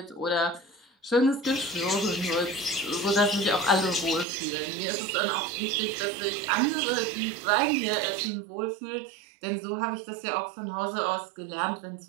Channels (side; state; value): left; drops out; at 4.2 s